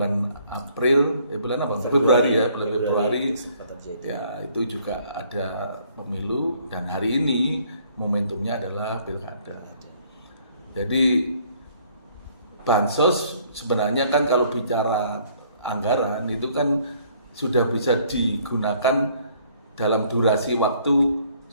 April, bulan apa? Februari ya, bulan Februari. Ya, itu juga ada pemilu dan hari ini momentumnya adalah pilkada. Jadi bansos sebenarnya kan kalau bicara anggaran itu kan sudah bisa digunakan dalam durasi waktu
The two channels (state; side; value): inverted; both; correlation -0.62